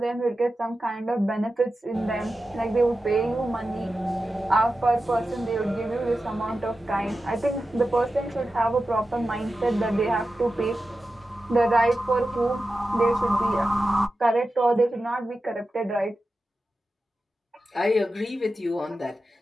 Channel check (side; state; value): both; normal; correlation 0.92